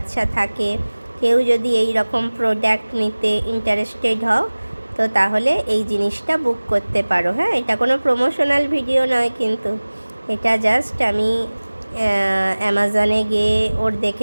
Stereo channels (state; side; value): inverted; both; correlation -1.00